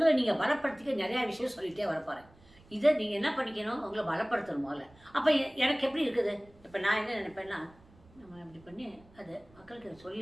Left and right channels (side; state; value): right; noise; rumble, 27 dB below the sound